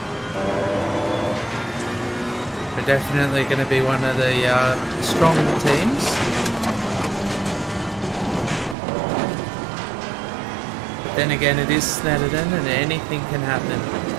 We're definitely going to be one of the stronger teams. But then again, it is Snetterton and anything can happen.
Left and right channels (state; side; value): drops out; left; at 8.8 s